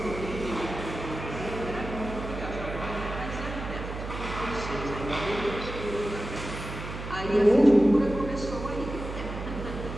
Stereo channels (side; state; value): right; noise; hum, 8 dB below the sound